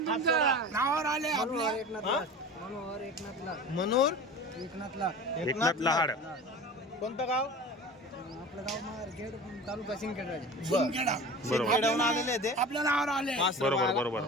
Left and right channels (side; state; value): both; normal; correlation 0.36